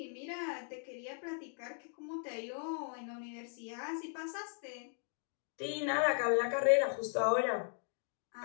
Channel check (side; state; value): right; silent; 53 dB below the other